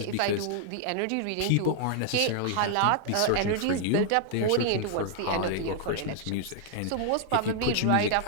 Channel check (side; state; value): both; different; correlation 0.00